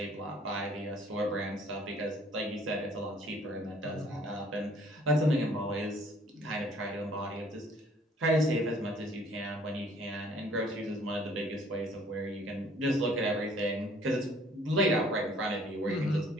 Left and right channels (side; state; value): both; normal; correlation 0.58